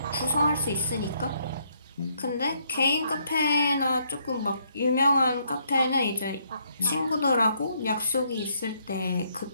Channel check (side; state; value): both; inverted; correlation -0.71